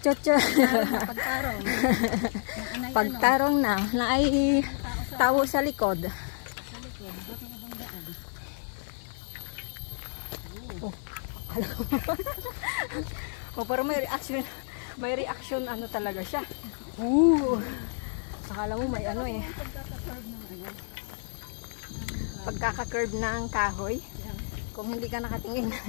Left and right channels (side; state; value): right; silent; 58 dB below the other